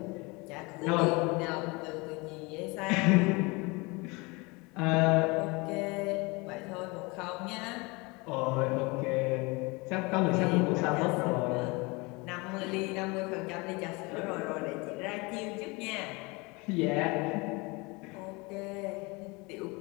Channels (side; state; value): right; quieter; 26.4 dB